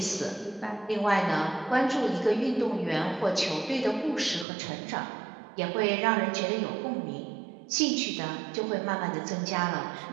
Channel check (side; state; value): left; drops out; at 4.5 s